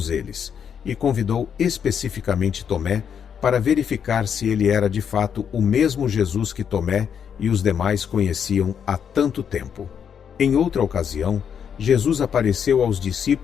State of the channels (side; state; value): right; quieter; 7.8 dB